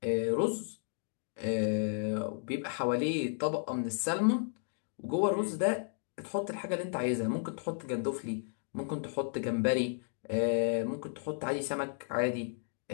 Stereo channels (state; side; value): silent; right; digital silence